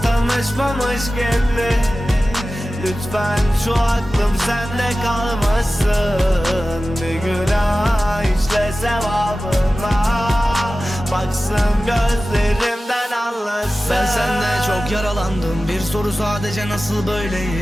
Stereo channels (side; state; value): both; normal; correlation 0.95